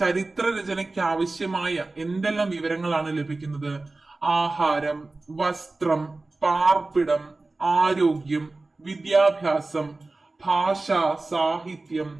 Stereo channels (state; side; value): quieter; left; 3.3 dB